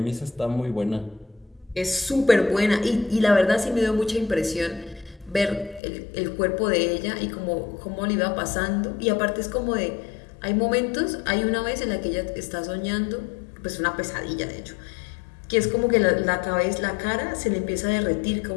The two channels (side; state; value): right; drops out; at 5.8 s